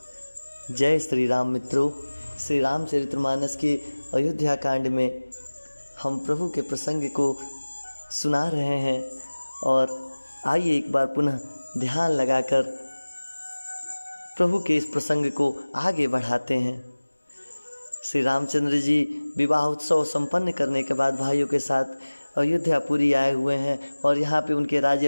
जय श्री राम मित्रों, श्री रामचरितमानस के अयोध्या कांड में हम प्रभु के प्रसंग को सुना रहे हैं और आइए एक बार पुनः ध्यान लगाकर प्रभु के इस प्रसंग को आगे बढ़ाते हैं। श्री रामचंद्र जी विवाह उत्सव संपन्न करने के बाद भाइयों के साथ अयोध्यापुरी आए हुए हैं और यहाँ पे उनके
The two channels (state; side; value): inverted; both; correlation -1.00